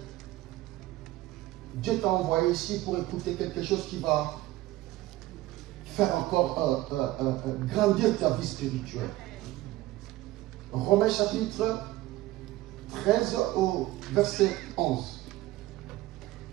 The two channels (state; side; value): quieter; left; 17.0 dB